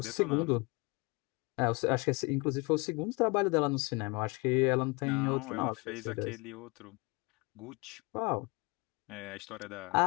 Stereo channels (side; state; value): right; quieter; 28.1 dB